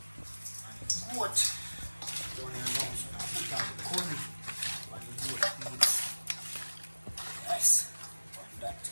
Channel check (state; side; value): inverted; both; correlation -1.00